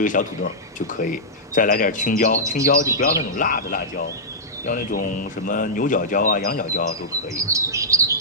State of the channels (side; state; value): both; normal; correlation -0.10